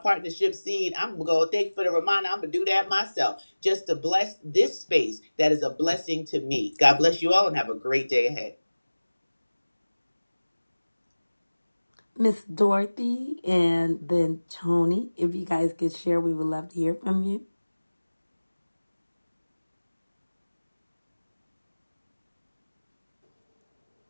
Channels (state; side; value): inverted; both; correlation -1.00